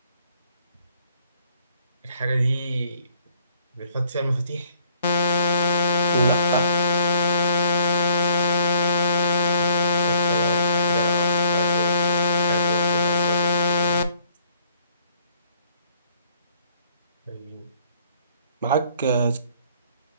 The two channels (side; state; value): both; inverted; correlation -0.61